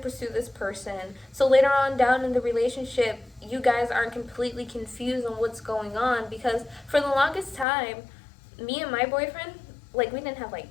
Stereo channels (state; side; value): drops out; right; at 7.7 s